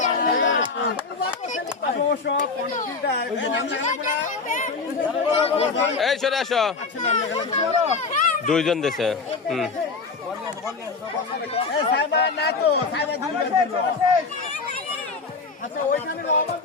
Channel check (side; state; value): right; quieter; 4.4 dB